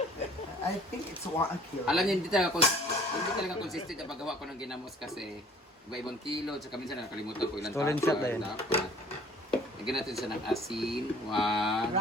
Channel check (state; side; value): normal; both; correlation 0.53